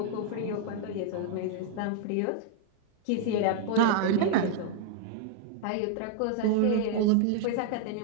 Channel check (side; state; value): both; different; correlation 0.00